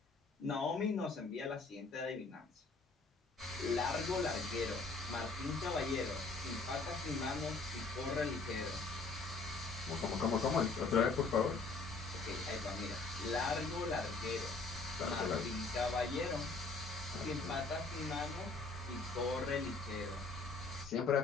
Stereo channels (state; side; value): quieter; right; 3.8 dB